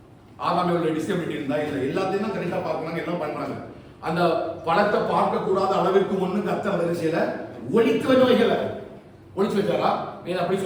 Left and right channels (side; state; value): both; identical; correlation 1.00